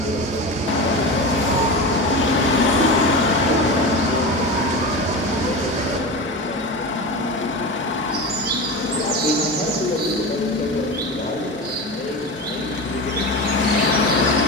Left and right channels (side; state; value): both; normal; correlation 0.25